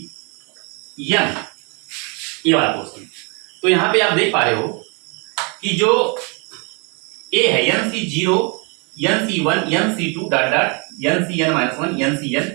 ये वाला पोर्शन। तो यहां पे आप देख पा रहे हो कि जो ए है n C 0 n C 1 N C 2 dot dot N C N minus 1 N C N,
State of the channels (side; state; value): left; quieter; 33.1 dB